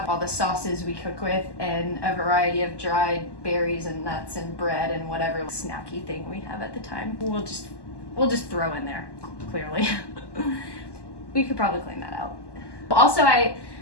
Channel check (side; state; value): right; late; 1.1 ms